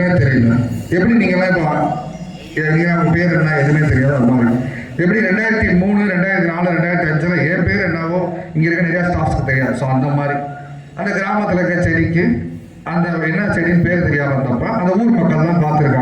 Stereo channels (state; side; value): identical; both; correlation 1.00